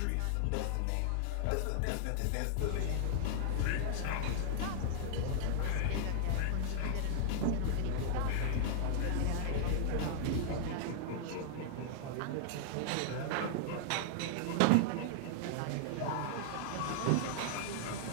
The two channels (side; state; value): both; different; correlation -0.01